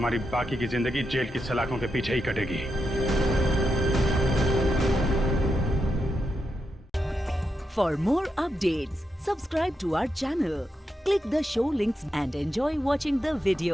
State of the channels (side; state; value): both; normal; correlation 0.85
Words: बाकी की जिंदगी जेल की सलाखों के पीछे ही कटेगी। For more updates, subscribe to our channel, click the show links and enjoy watching the